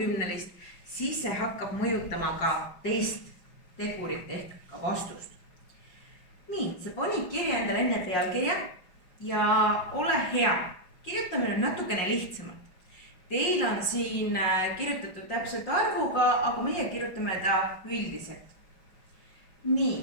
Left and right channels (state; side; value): late; right; 6.2 ms